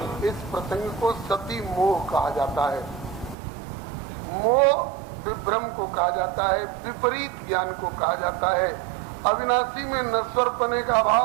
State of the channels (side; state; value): left; drops out; at 3.4 s